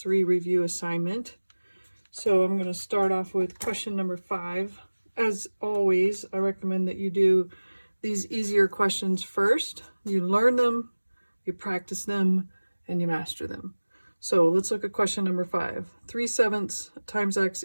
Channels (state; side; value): inverted; both; correlation -1.00